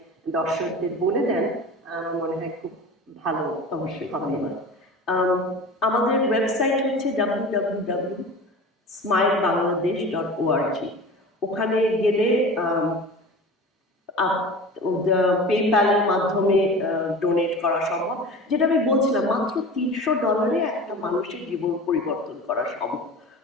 দর্শকদের বলে দেন, আমার মনে হয় খুব ভালো। অবশ্যই হবে। আমাদের ওয়েবসাইট হচ্ছে www.smilebangladesh.org। ওখানে গেলে পেপ্যালের মাধ্যমে ডোনেট করা সম্ভব। যেটা আমি বলছিলাম, মাত্র $300 একটা মানুষের জীবন পরিবর্তন করা সম্ভব।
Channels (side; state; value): both; normal; correlation 0.36